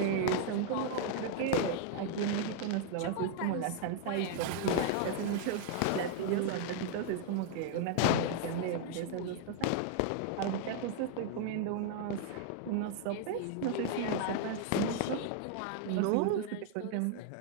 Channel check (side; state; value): both; different; correlation 0.00